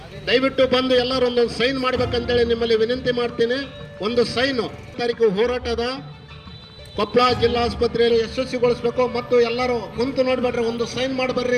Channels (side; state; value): both; identical; correlation 1.00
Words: ದಯವಿಟ್ಟು ಬಂದು ಎಲ್ಲರೂ ಒಂದೊಂದು ಸೈನ್ ಮಾಡ್ಬೇಕಂತೇಳಿ ನಿಮ್ಮಲ್ಲಿ ವಿನಂತಿ ಮಾಡ್ತೀನಿ. ಒಂದು ಸೈನು ತಾರೀಕು ಹೋರಾಟದ ಕೊಪ್ಪಳ ಜಿಲ್ಲಾಸ್ಪತ್ರೆಯಲ್ಲಿ ಯಶಸ್ವಿಗೊಳಿಸ್ಬೇಕು. ಮತ್ತು ಎಲ್ಲರೂ ಕುಂತು ನೋಡ್ಬೇಡ್ರಿ, ಒಂದು ಸೈನ್